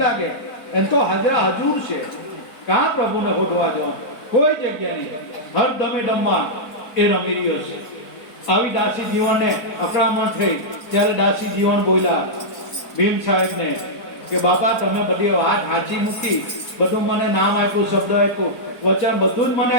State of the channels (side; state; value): right; late; 4.4 ms